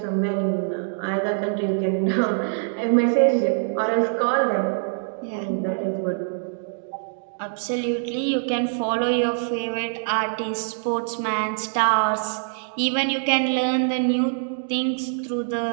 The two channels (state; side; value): silent; left; digital silence